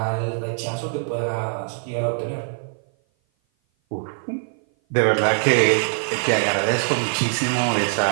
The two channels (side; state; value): left; silent; 56 dB below the other